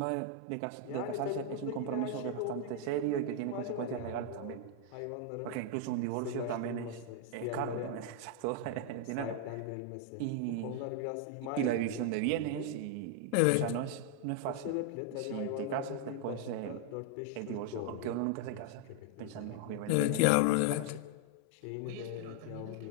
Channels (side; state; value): both; different; correlation 0.00